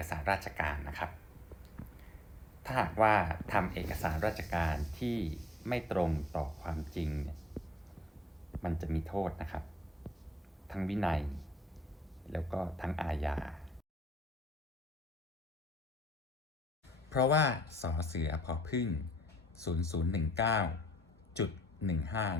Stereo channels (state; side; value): normal; both; correlation 0.65